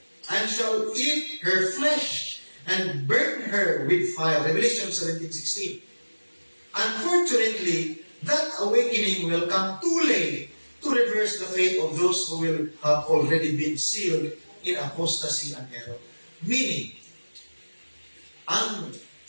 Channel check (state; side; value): inverted; both; correlation -1.00